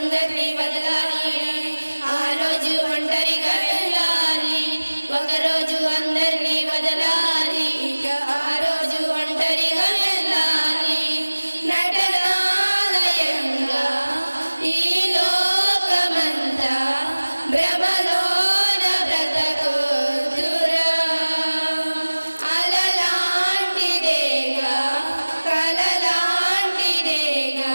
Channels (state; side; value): inverted; both; correlation -1.00